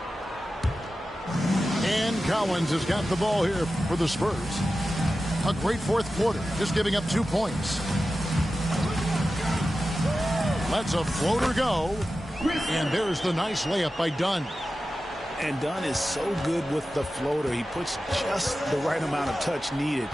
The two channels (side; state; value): both; normal; correlation 0.93